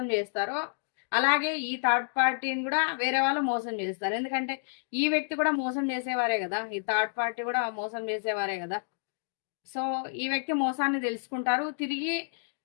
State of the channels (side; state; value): right; silent; digital silence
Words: చేస్తారో, అలాగే ఈ థర్డ్ పార్టీని కూడా వేరే వాళ్ళు మోసం చేస్తారు. ఎందుకంటే ఈ వ్యక్తి కూడా మోసం చేసేవారే కదా, ఈ థర్డ్ పార్టీ కూడా మోసం చేసేవారే కదా. సో ఈ వ్యక్తి మోసాన్ని తెలుసుకుంటారు, తిరిగి